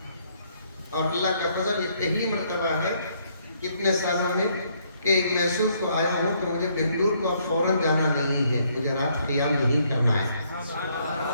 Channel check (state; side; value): inverted; both; correlation -0.69